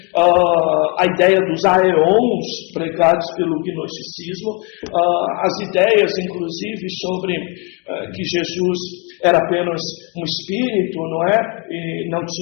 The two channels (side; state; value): right; quieter; 32.7 dB